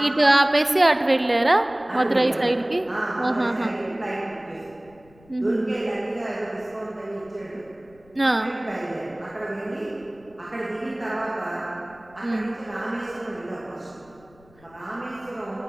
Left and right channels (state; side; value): noise; left; rumble, 28 dB below the sound